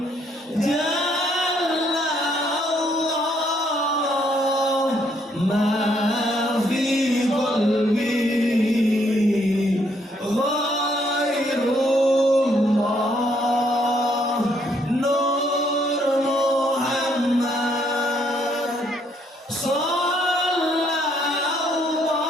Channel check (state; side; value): normal; both; correlation 0.70